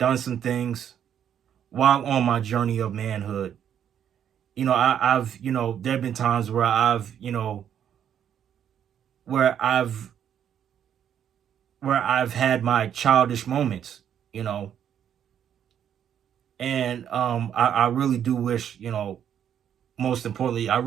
some things while on my journey of manhood. I've there have been times where where I've I've had my childish moments, you know, and I really do wish, most importantly, I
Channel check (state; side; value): quieter; left; 9.2 dB